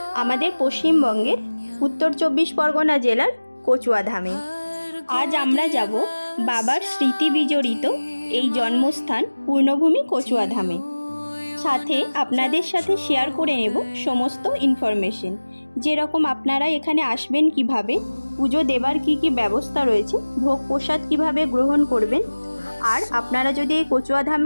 আমাদের পশ্চিমবঙ্গের উত্তর 24 পরগনা জেলার কচুয়াধামে। আজ আমরা যাব বাবার স্মৃতি বিজড়িত এই জন্মস্থান পূর্ণভূমি কচুয়াধামে। সাথে আপনাদের সাথে শেয়ার করে নেব সমস্ত ইনফরমেশন, যেরকম আপনারা এখানে আসবেন কিভাবে, পুজো দেবার কি কি ব্যবস্থা রয়েছে, ভোগ প্রসাদ কিভাবে গ্রহণ করবেন। আর আপনারা যদি এই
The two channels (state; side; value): inverted; both; correlation -1.00